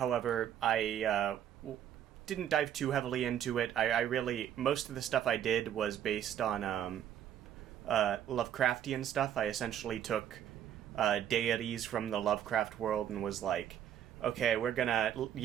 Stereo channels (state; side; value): quieter; left; 10.2 dB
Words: I didn't dive too heavily into it. I really, most of the stuff I did was based on Lovecraftian stuff. I essentially took deities from the Lovecraft world and was like, okay, we're gonna